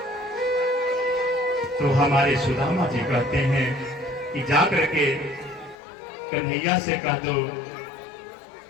तो हमारे सुदामा जी कहते हैं कि जाकर के कन्हैया से कह दो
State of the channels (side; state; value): right; drops out; at 5.8 s